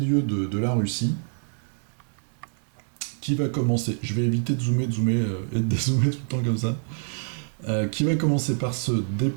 de la Russie, qui va commencer. Je vais éviter de zoomer et de dézoomer tout le temps comme ça. Qui va commencer par se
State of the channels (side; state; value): left; silent; digital silence